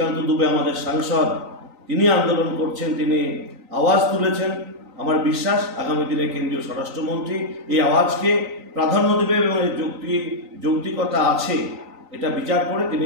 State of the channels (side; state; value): left; late; 3.9 ms